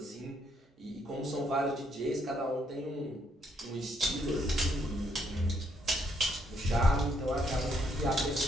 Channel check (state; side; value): normal; both; correlation 0.73